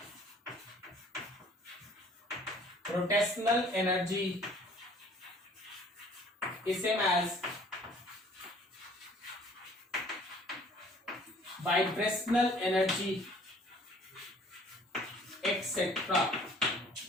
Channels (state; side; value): normal; both; correlation 0.54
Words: rotational energy, is same as vibrational energy, etc.